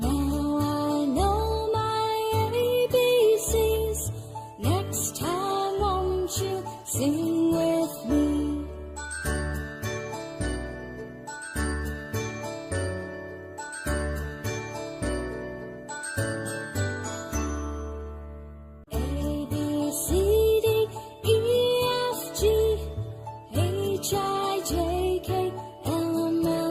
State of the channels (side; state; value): both; identical; correlation 1.00